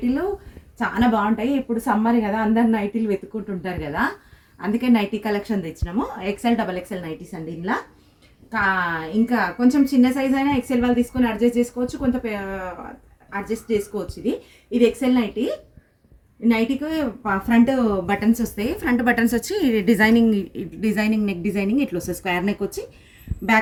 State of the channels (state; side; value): identical; both; correlation 1.00